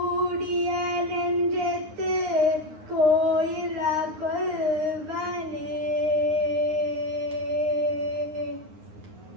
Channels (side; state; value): left; late; 9.7 ms